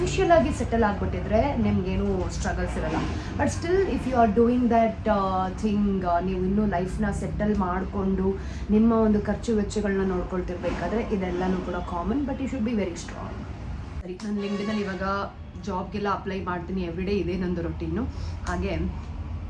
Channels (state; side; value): identical; both; correlation 1.00